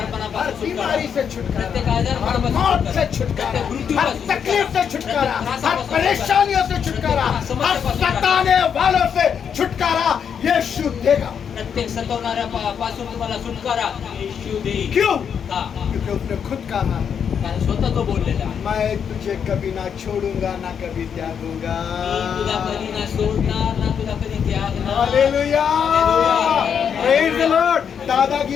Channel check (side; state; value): right; quieter; 7.5 dB